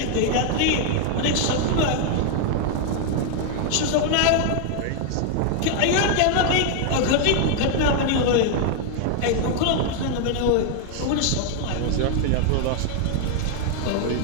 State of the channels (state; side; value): different; both; correlation 0.00